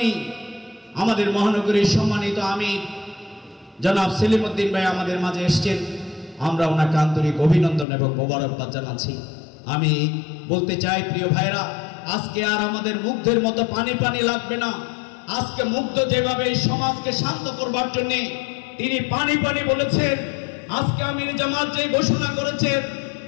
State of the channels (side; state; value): right; drops out; at 7.9 s